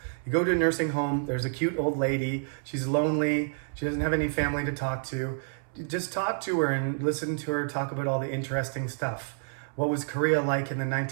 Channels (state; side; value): silent; left; 59 dB below the other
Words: You go to a nursing home, there's a cute old lady. She's lonely. She doesn't have any family to talk to. Just talk to her and listen to her talk about all the interesting stuff. What was Korea like in the